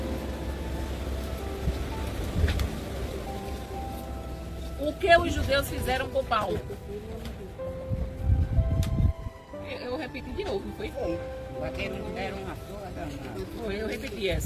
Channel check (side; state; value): both; identical; correlation 1.00